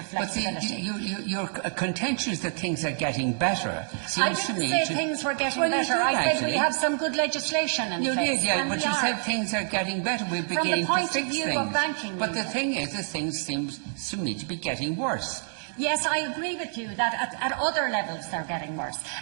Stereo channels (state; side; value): silent; left; 60 dB below the other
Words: flexibility. But your contention is that things are getting better. I didn't say things were getting better. I said we have some good legislation in place. You did, yeah, but you said things are getting better. We're beginning to fix things. From the point of view of banking. But the thing is that things seem to me to be getting worse. Yes, I agree with you that at other levels they're getting worse.